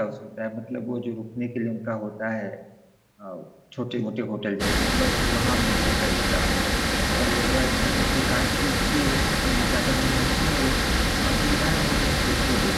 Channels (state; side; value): identical; both; correlation 1.00